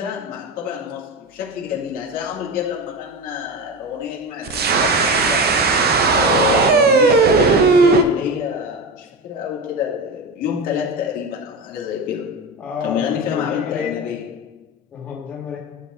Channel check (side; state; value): both; normal; correlation 0.23